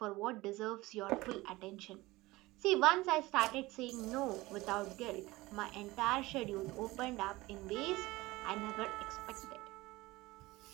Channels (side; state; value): left; quieter; 20.1 dB